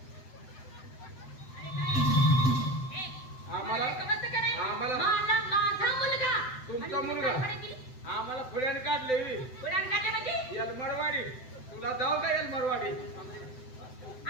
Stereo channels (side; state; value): right; late; 7.8 ms